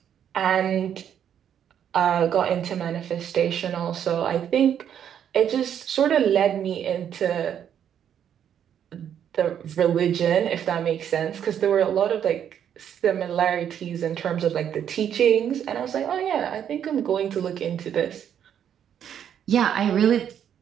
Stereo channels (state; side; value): quieter; left; 9.2 dB